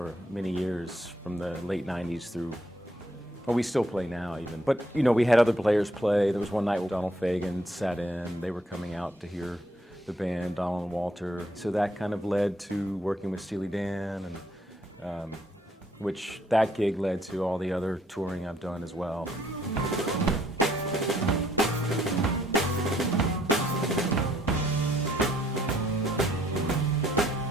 many years, from the late 90s through, well, we still play now even. But, you know, we had other players play. There was one night when Donald Fagen sat in. They were coming out to hear the band, Donald and Walter. So that kind of led to working with Steely Dan, and which that gig led to all the other touring I've done as well.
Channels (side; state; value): both; normal; correlation 0.68